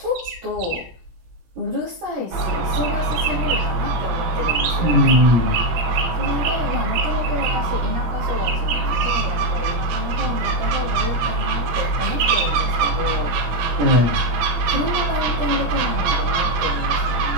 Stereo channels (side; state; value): left; late; 18 ms